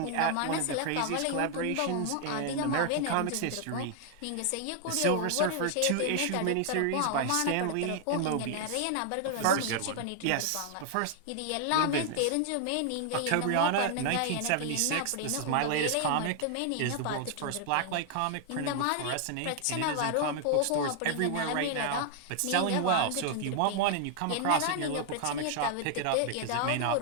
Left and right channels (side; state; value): both; different; correlation 0.00